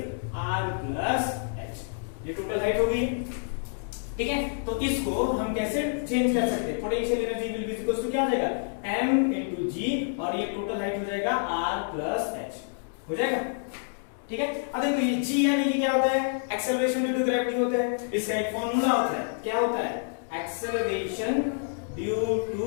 r plus h। ये टोटल हाइट हो गई। ठीक है, तो इसको हम कैसे चेंज कर सकते हैं, potential energy will be equal to क्या हो जाएगा m into g और ये टोटल हाइट हो जाएगा r प्लस h हो जाएगा। ठीक है, अब देखो ये g यानी कि क्या होता है एक्सेलरेशन ड्यू टू ग्रेविटी होता है। इसका एक फॉर्मूला होता है, क्या होता है एक्सेलरेशन ड्यू टू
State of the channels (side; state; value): right; silent; digital silence